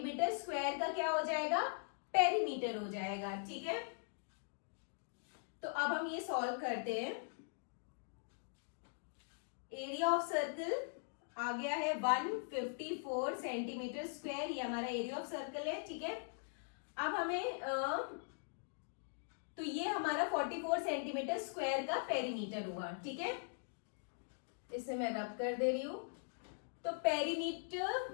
स्क्वायर का क्या हो जाएगा, पेरीमीटर हो जाएगा, ठीक है। तो अब हम ये सॉल्व करते हैं। एरिया ऑफ सर्कल आ गया है 154 सेंटीमीटर स्क्वायर, ये हमारा एरिया ऑफ सर्कल है, ठीक है। अब हमें तो ये हमारा 44 सेंटीमीटर स्क्वायर का पेरीमीटर हुआ, ठीक है। इसे मैं रब कर दे रही हूं। तो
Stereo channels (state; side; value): silent; right; digital silence